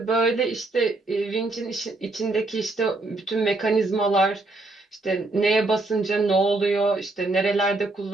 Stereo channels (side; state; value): left; quieter; 3.0 dB